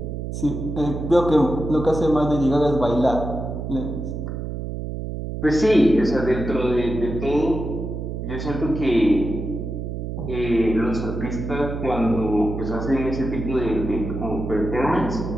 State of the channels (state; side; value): noise; right; hum, 5 dB below the sound